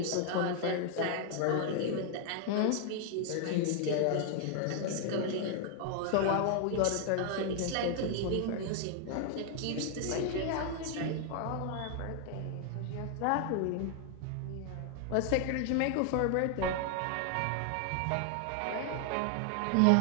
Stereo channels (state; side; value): different; both; correlation 0.00